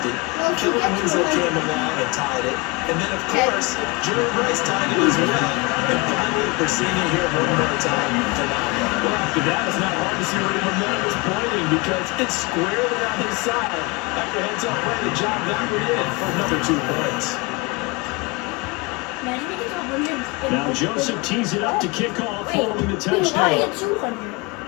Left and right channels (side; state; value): right; quieter; 26.5 dB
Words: Kellen Winslow came along and tied it. And then, of course, Jerry Rice tied it as well. And finally, we're seeing it here one more time. Phenomenal. Well, after that, it's not hard to see where the momentum is pointing because it's squarely on his side. After heads-up play, the job that we're in for another 2 points. Now Joseph tees it up to kick off following the touchdown.